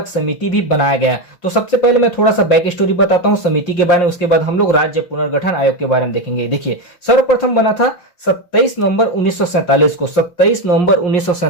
समिति भी बनाया गया। तो सबसे पहले मैं थोड़ा सा बैक स्टोरी बताता हूं समिति के बारे में, उसके बाद हम लोग राज्य पुनर्गठन आयोग के बारे में देखेंगे। देखिए, सर्वप्रथम बना था 27 नवंबर 1947 को। 27 नवंबर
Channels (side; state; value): right; late; 5.7 ms